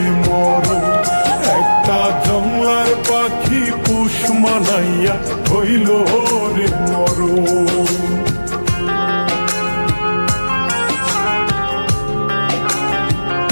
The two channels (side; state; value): both; inverted; correlation -1.00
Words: মরণ। একটা জংলার পাখি পোষ মানাইয়া হইল